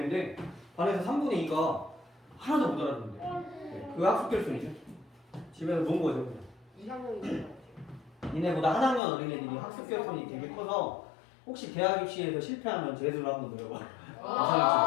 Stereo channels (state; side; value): drops out; right; at 9.0 s